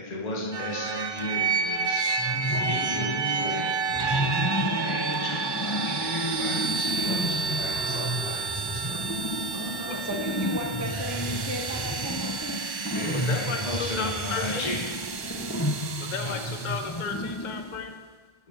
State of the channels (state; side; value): late; right; 1.1 ms